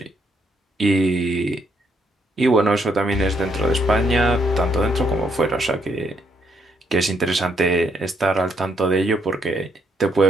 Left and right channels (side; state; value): both; normal; correlation 0.73